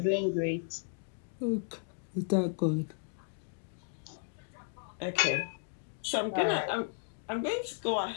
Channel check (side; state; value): right; silent; digital silence